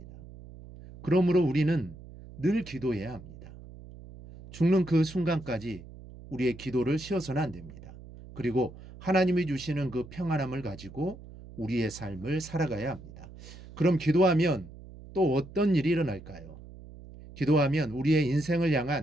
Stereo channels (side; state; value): right; noise; hum, 17 dB below the sound